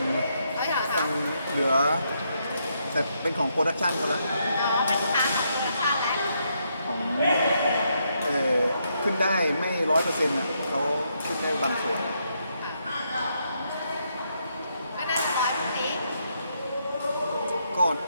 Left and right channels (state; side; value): inverted; both; correlation -0.77